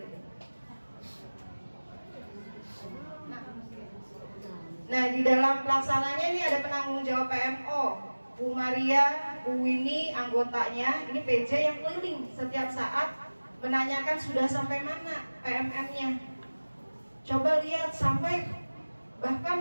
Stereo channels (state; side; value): inverted; both; correlation -1.00